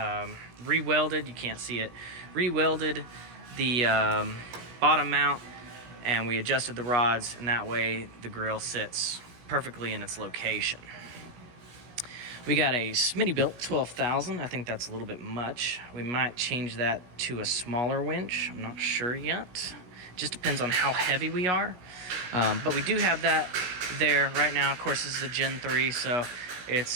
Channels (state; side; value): late; left; 17 ms